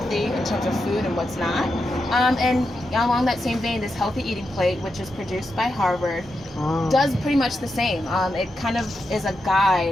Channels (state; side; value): normal; both; correlation 0.87